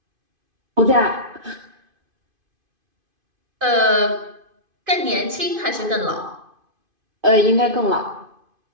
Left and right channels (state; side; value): late; left; 2.5 ms